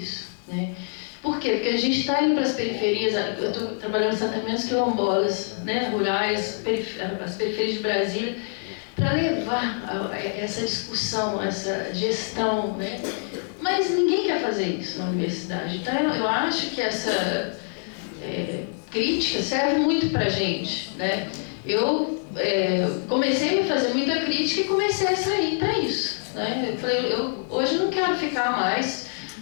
né? Por quê? Porque a gente está indo para as periferias, eu estou trabalhando em assentamentos quilombolas, né, rurais, as periferias de Brasília, para levar essa discussão, essa gestão, né? Mas ninguém quer fazer isso na universidade. Então eu acho que essa crítica serve muito para a gente, né? Eu comecei a me fazer muita crítica e comecei a sair para isso, né? Eu falei, hoje não quero ficar mais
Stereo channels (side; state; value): right; silent; 62 dB below the other